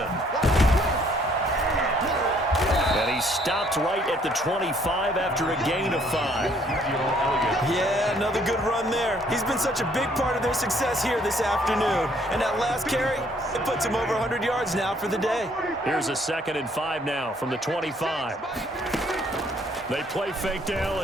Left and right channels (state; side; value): normal; both; correlation 0.64